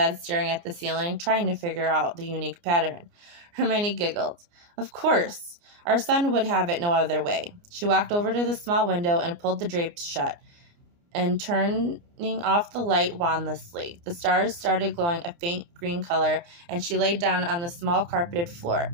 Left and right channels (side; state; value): left; late; 29 ms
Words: staring at the ceiling, trying to figure out the unique pattern. Hermione giggled. Of course. Our son would have it no other way. She walked over to the small window and pulled the drapes shut, and turning off the light wandlessly. The stars started glowing a faint green color, and she lay down on the small carpeted floor.